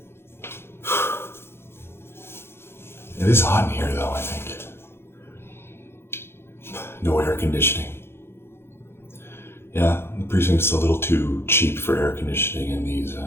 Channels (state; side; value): late; right; 0.12 ms